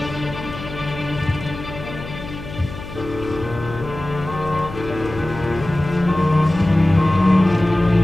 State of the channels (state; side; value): noise; left; hum, 12 dB below the sound